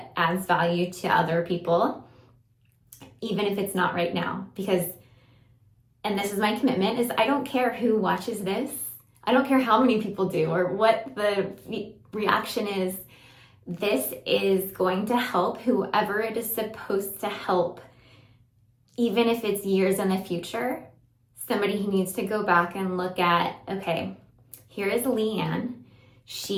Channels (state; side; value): identical; both; correlation 1.00